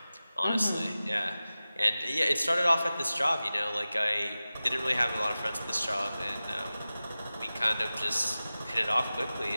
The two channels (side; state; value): both; inverted; correlation -0.96